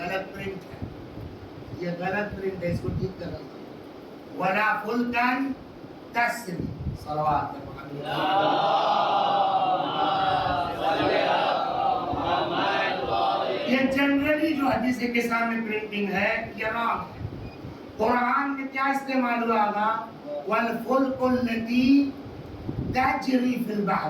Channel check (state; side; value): identical; both; correlation 1.00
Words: پرنٹ ہے, یہ غلط پرنٹ ہے, اس کو ٹھیک کرنا. ولا فلکا تسری, صلوات یہ جنرلی جو حدیث کے سامنے پرنٹنگ ہے یہ رانگ ہے. قرآن میں کیا استعمال ہوا گا؟ والفلک التی تجری فی البحر,